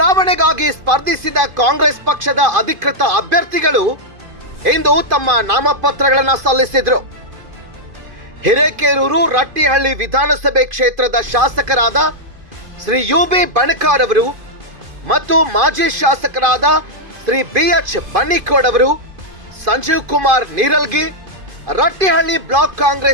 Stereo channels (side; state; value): left; late; 2.5 ms